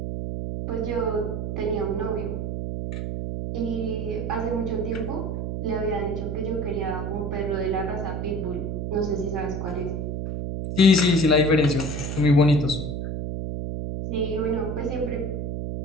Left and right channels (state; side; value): noise; right; hum, 3 dB below the sound